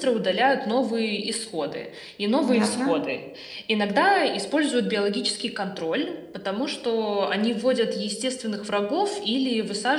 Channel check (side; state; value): both; identical; correlation 1.00